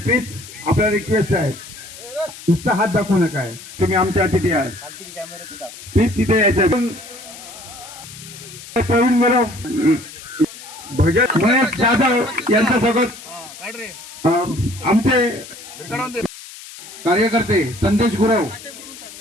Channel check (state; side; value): noise; left; hiss, 15 dB below the sound